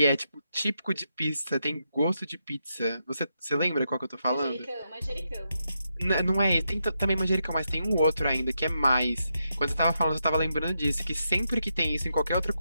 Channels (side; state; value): both; inverted; correlation -0.83